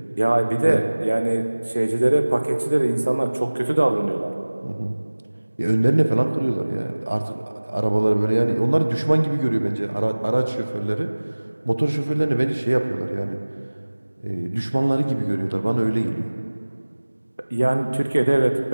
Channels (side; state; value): both; inverted; correlation -1.00